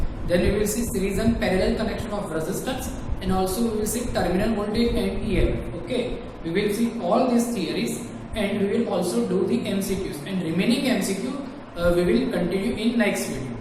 then we will see series and parallel connection of resistance, and also we will see terminal voltage and EMF. Okay, we will see all these theories and we will also do the MCQs, and remaining MCQ we will continue in next video.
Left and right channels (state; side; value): identical; both; correlation 1.00